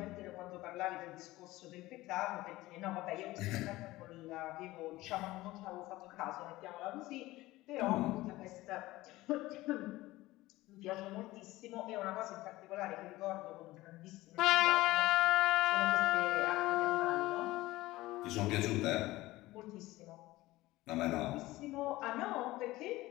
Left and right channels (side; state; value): right; quieter; 18.2 dB